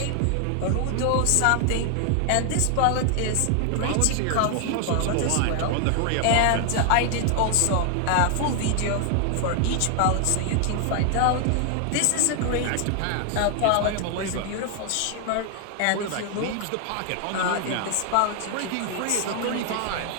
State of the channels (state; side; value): different; both; correlation 0.00